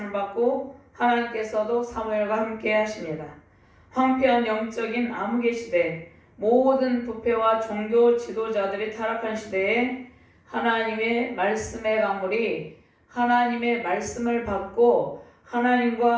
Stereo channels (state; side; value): identical; both; correlation 1.00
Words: 받고 하나님께서도 사무엘과 함께 하십니다. 황폐한 영적인 암흑의 시대, 모든 부패와 종교 지도자들이 타락한 시대에 하나님의 말씀의 강물이 하나님의 말씀을 받고